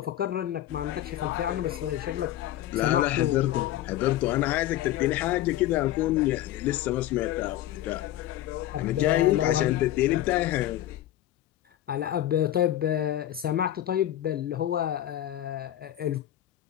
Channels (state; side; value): quieter; right; 13.2 dB